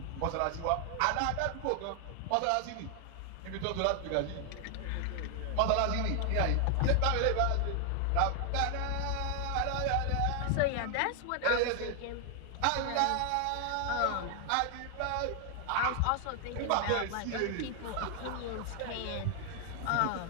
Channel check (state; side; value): different; both; correlation 0.00